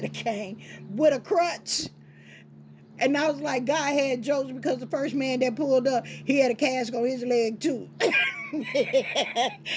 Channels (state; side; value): identical; both; correlation 1.00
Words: a cane, with a crutch. And I was like, God had jokes because the first man that pulled up, he had a cast on his leg too.